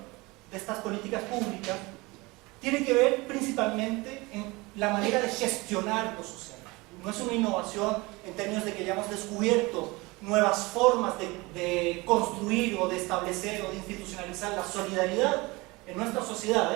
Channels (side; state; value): left; quieter; 23.6 dB